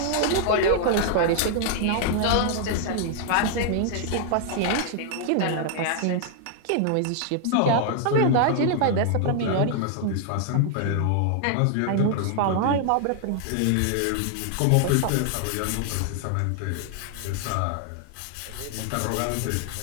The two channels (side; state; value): both; different; correlation 0.00